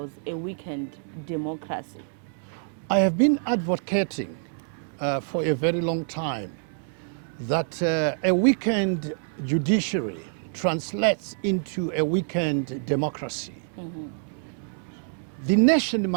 a weakened democracy? I have been advocating for a very long time that a weakened judiciary translates into a weakened democracy. The nation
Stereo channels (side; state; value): left; silent; 60 dB below the other